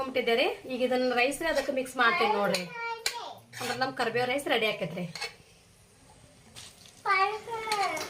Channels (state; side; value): identical; both; correlation 1.00